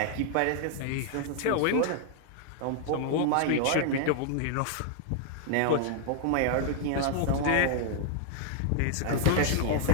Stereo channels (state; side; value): different; both; correlation 0.00